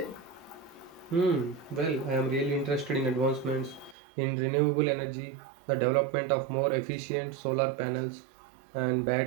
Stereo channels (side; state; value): left; drops out; at 4.0 s